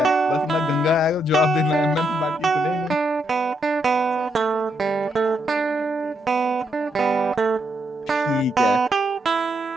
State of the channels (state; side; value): normal; both; correlation 0.79